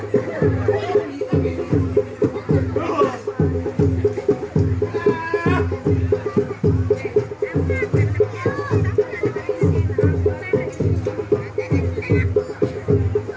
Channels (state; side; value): identical; both; correlation 1.00